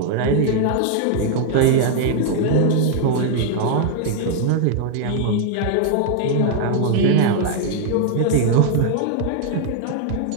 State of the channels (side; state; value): both; different; correlation 0.00